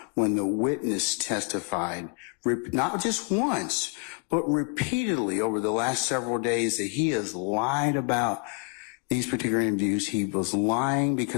when the witness testified, not just once, but repeatedly over the last several days, that he has lied about these particular interviews? He was lying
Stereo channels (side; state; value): right; quieter; 38.5 dB